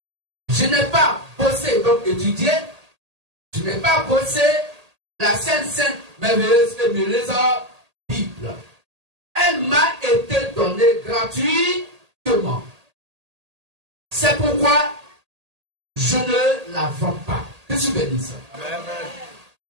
Je n'ai pas bossé, donc étudié, je n'ai pas bossé la sainte, merveilleuse et merveilleuse Bible. Elle m'a été donnée gratuitement. C'est pourquoi je ne la vends pas. Je suis béni ça.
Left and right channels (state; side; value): late; left; 1.8 ms